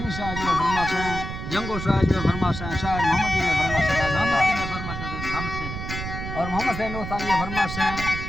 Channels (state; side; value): noise; right; rumble, 6 dB below the sound